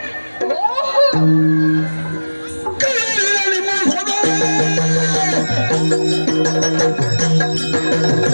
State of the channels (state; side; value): inverted; both; correlation -1.00